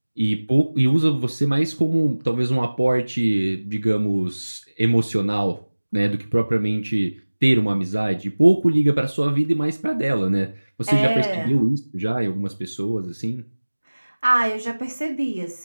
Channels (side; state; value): both; inverted; correlation -1.00